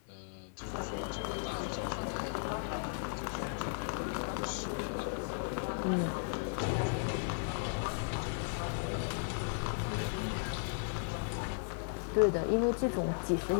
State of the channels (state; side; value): silent; right; 54 dB below the other